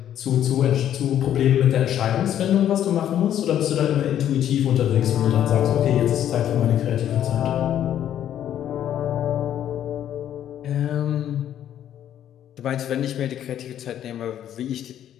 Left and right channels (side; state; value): right; quieter; 10.7 dB